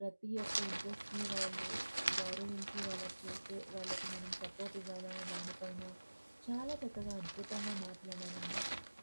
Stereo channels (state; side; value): inverted; both; correlation -1.00